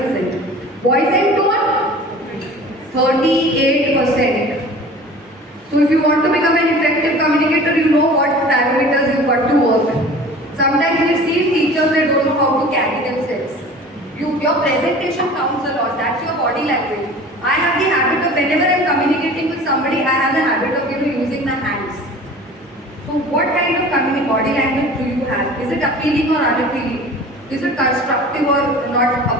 Voice and tone, 38%. So if you want to become an effective communicator, you know what parameters you've got to work. Sometimes we see teachers, they don't know how to carry themselves. Your presentation counts a lot. That's your body language. I have the habit of, whenever I'm communicating with somebody, I have the habit of using the hands. So what kind of body language do you have? Is it appealing or unappealing? Is it constructive or not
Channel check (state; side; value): normal; both; correlation 0.42